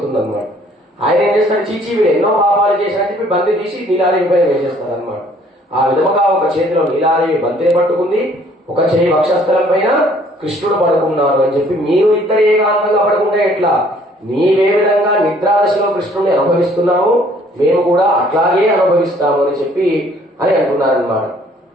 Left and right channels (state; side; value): normal; both; correlation 0.59